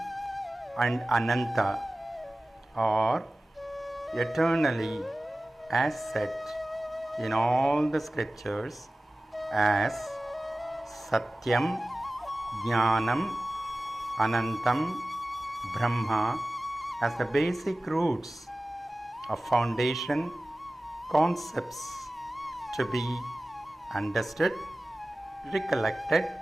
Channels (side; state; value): both; normal; correlation 0.97